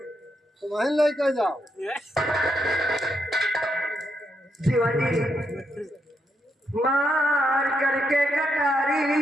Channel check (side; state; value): both; normal; correlation 0.80